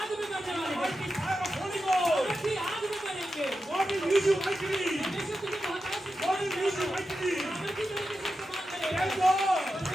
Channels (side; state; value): both; normal; correlation 0.90